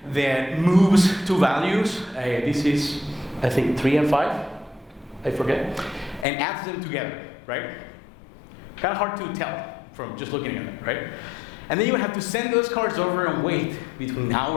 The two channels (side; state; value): right; drops out; at 6.2 s